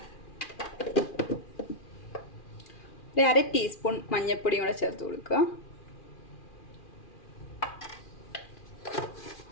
ഒരു 1/2 ടീസ്പൂൺ മഞ്ഞൾപ്പൊടിയും കൂടെ ചേർത്ത് കൊടുക്കുക.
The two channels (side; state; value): right; late; 2.4 ms